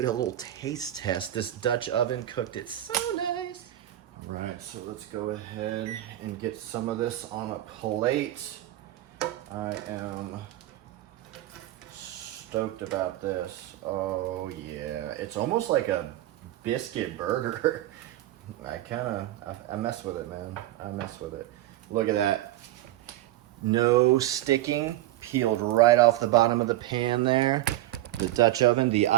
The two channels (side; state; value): left; quieter; 14.7 dB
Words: a little taste test. This Dutch oven cooked it so nice. All right, so let's go ahead and get some of this on a plate. I am stoked about this. Oh yeah, it's almost like a biscuit burger. I mess with it, man. I mess with it. Look at that. No sticking. peeled right off the bottom of the pan there. The Dutch oven, the